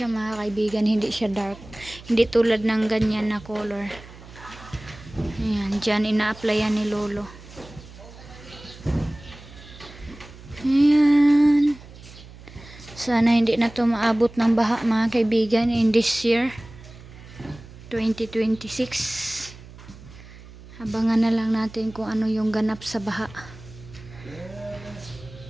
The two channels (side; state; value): right; noise; hum, 18 dB below the sound